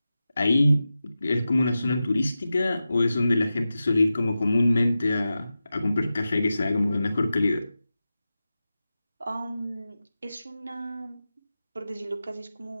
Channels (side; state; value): both; inverted; correlation -0.93